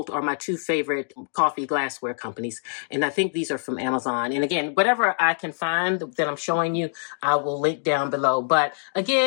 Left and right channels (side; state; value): right; silent; digital silence